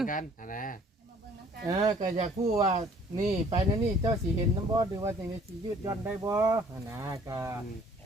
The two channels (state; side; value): normal; both; correlation 0.56